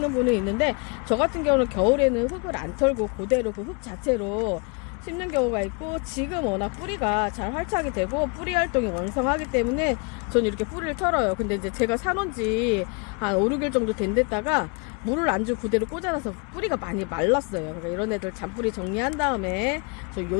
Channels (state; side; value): quieter; right; 33.7 dB